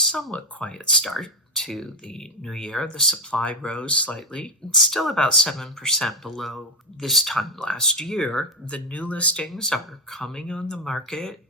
quiet start to the new year, the supply rose slightly. It's still about 7% below this time last year. The new listings are coming on the market,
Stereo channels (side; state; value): both; normal; correlation 0.10